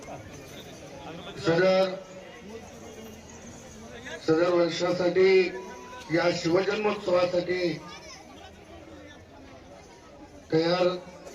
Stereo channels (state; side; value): identical; both; correlation 1.00